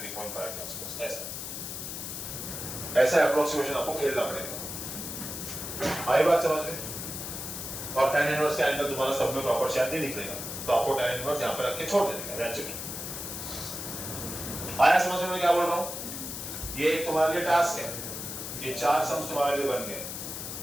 के आसपास, ऐसा अप्रोक्सीमेशन आपको खेलना पड़ेगा। आई बात समझ में? और tan इनवर्स का एंगल तुम्हारा सब में प्रॉपर शेप नहीं निकलेगा, तो आपको tan इनवर्स यहाँ पे रख के छोड़ देने का, दैट्स इट। आया समझ में मैं क्या बोल रहा हूँ? ये एक तुम्हारे लिए टास्क है, ये 4 सम्स तुम्हारे लिए बन गए।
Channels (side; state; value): left; noise; hiss, 7 dB below the sound